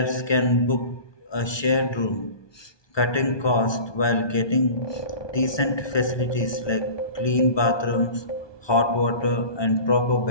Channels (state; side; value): late; right; 1.2 ms